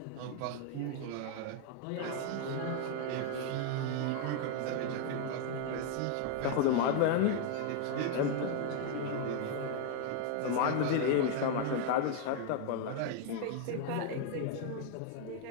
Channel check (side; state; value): both; different; correlation 0.00